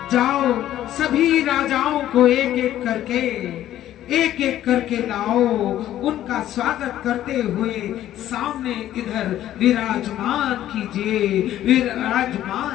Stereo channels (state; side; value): quieter; right; 12.6 dB